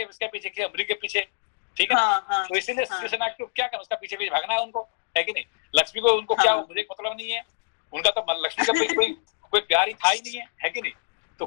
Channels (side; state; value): right; silent; digital silence